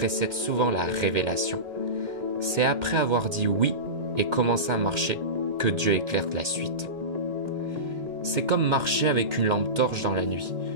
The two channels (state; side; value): late; left; 2.1 ms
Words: souvent la révélation. C'est après avoir dit oui et commencé à marcher que Dieu éclaire la suite. C'est comme marcher avec une lampe torche dans la nuit.